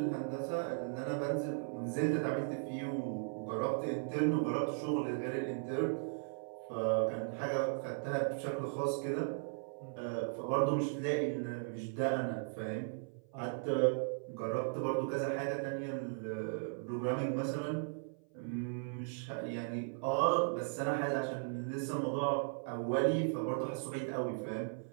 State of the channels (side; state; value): left; silent; 53 dB below the other